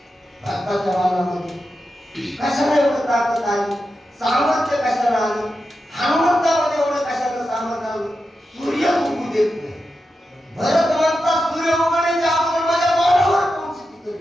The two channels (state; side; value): normal; both; correlation 0.89